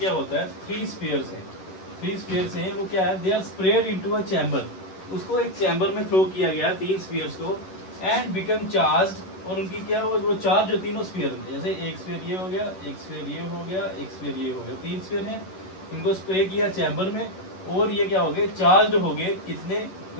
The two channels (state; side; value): late; right; 11 ms